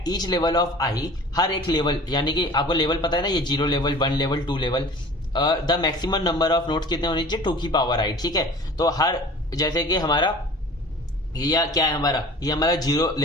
each level of I, हर एक लेवल, यानी कि आपको लेवल पता है ना, ये 0 level 1 level 2 level, the maximum number of notes कितने होने चाहिए, 2 की पावर आई, ठीक है। तो हर जैसे कि हमारा ये क्या है, हमारा ये हमारा 0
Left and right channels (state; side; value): normal; both; correlation 0.43